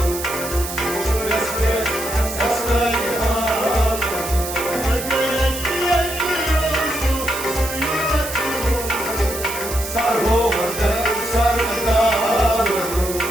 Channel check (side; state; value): right; noise; hiss, 8 dB below the sound